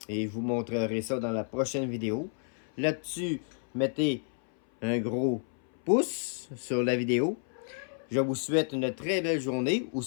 Et je vous montrerai ça dans la prochaine vidéo. Là-dessus, mettez un gros pouce sur la vidéo. Je vous souhaite une très belle journée ou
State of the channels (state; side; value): silent; right; 58 dB below the other